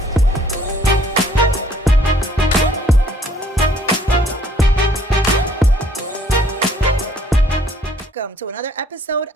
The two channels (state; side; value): normal; both; correlation 0.61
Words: Welcome to another episode